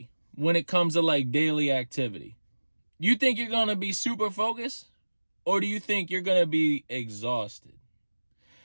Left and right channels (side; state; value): both; inverted; correlation -1.00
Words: when it comes to like daily activity? You think you're going to be super focused? Or do you think you're going to be exhausted?